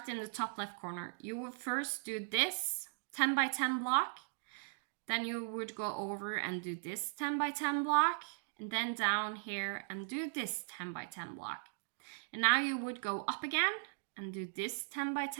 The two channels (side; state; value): left; silent; digital silence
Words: in the top left corner, you would first do this 10 by 10 block, then you would go over and do this 10 by 10 block, and then down here and do this 10 by 10 block. And now you would go up again and do this 10 by